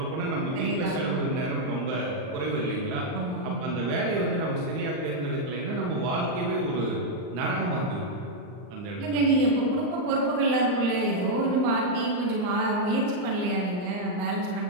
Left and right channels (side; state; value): left; late; 39 ms